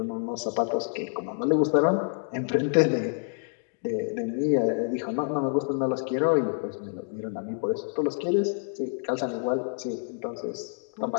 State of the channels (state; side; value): silent; right; digital silence